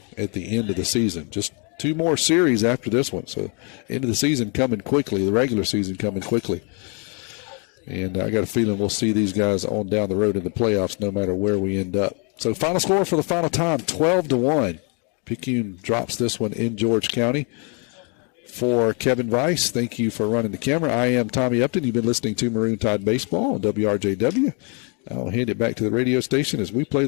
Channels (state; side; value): quieter; right; 36.0 dB